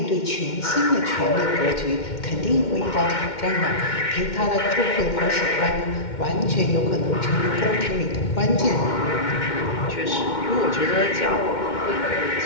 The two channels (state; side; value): late; right; 2.1 ms